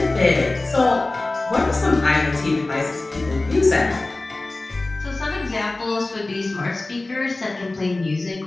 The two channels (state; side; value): quieter; right; 3.0 dB